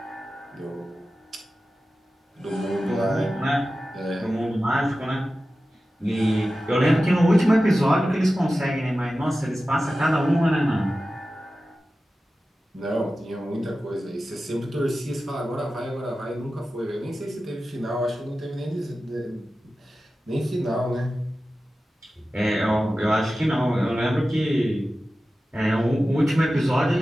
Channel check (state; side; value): normal; both; correlation 0.94